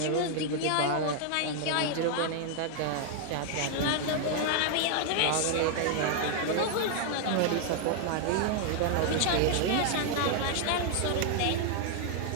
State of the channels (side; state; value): both; different; correlation 0.00